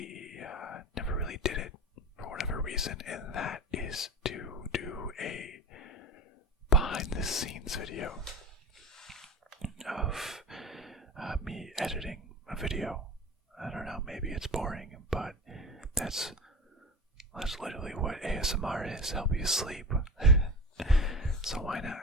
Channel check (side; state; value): both; normal; correlation 0.30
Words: did it for whatever reason, and that is to do a behind-the-scenes video of me editing a video. I don't know, maybe it's boring, but that's literally what ASMR is, help you sleep. So why not